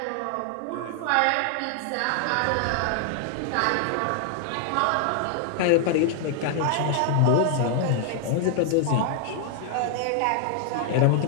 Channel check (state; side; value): different; both; correlation 0.00